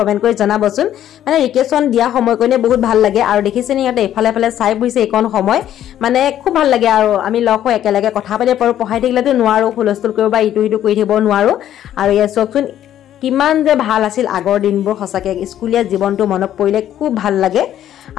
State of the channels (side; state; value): right; quieter; 11.4 dB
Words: কৰি জনাবচোন। মানে ৰিকেশ্যন দিয়া সময়কনে বহুত ভাল লাগে আৰু দেখিছেনে ইয়াতে এফালে এফালে চাই বুইছে এইকণ সময় মানে খুব ভাল লাগে আৰু আমি লগ হৈ একেলগে কথা পাতিব পাৰো। পঢ়াই থাকিলেতো নোৱাৰো, হুলস্থুল কৰিব বা ইটো সিটো কৰি থাকিব নোৱাৰো। আৰু ইয়াত চাওকচোন কিমান যে ভাল আছিল আগৰ দিনবোৰ। সঁচাকে স্কুলীয়া জীৱনটো মনত পৰিলে খুব ভাল লাগে